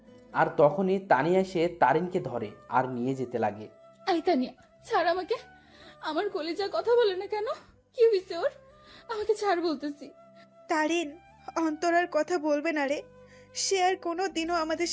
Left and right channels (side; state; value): both; identical; correlation 1.00